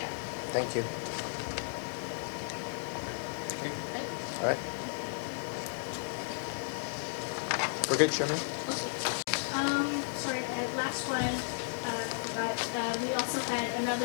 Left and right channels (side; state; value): right; silent; digital silence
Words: Thank you. All right. We're good, Sherman? Sorry, last one, but we also had